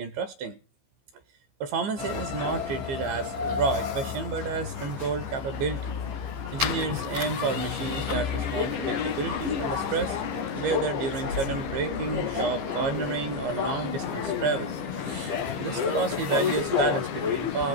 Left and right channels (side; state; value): left; late; 15 ms